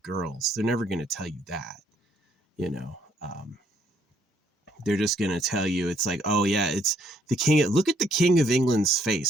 girls. They're never going to tell you that. They're just going to tell you it's like, oh yeah, it's the king. Look at the King of England's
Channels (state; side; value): normal; both; correlation 0.68